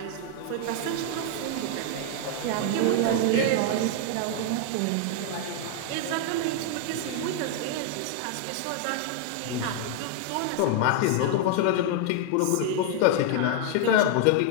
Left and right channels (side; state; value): both; different; correlation 0.00